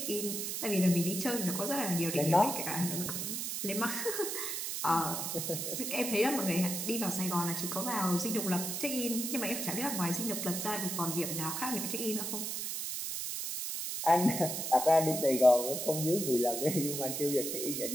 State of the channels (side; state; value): right; noise; hiss, 3 dB below the sound